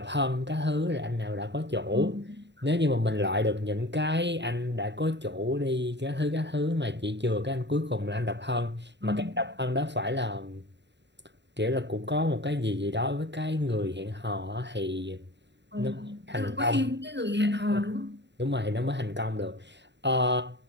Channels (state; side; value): late; left; 0.51 ms